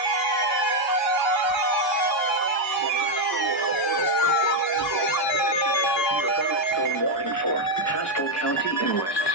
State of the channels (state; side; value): normal; both; correlation 0.03